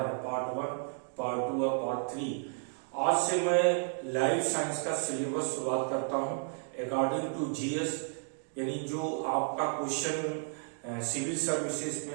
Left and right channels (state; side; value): silent; left; 56 dB below the other